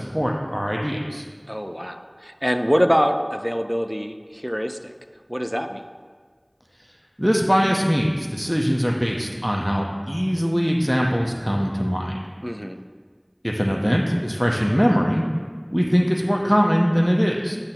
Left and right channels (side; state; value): both; identical; correlation 1.00